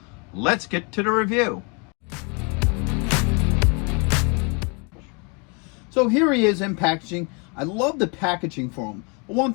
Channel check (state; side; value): quieter; right; 33.3 dB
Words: let's get to the review. So here he is in packaging. I love the packaging for him. One